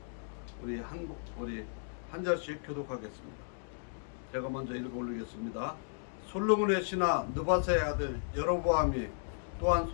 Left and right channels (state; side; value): silent; right; digital silence